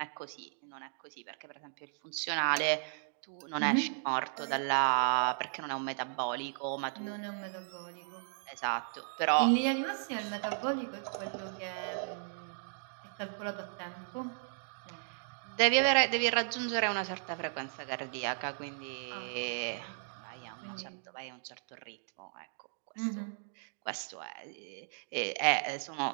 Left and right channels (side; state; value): left; silent; digital silence